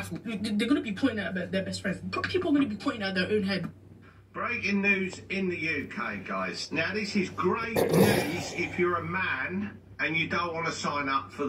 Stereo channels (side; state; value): both; identical; correlation 1.00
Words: they're going to be pointing at their best friends. People are going to be pointing at their own head. Breaking news in the UK, guys. Now, this is great news if you're a man and you don't want to sign up for